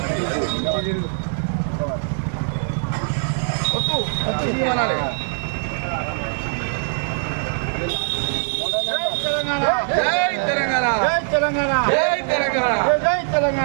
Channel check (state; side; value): silent; left; digital silence